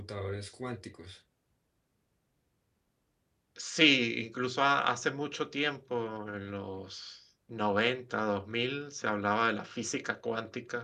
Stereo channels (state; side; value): identical; both; correlation 1.00